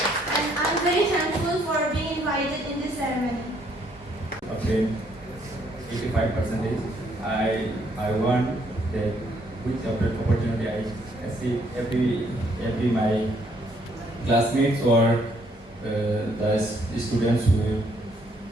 and I'm very thankful for being invited in this ceremony. obtained 85%. I want that with the opportunity I see every my classmates or the students who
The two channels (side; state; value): both; normal; correlation 0.68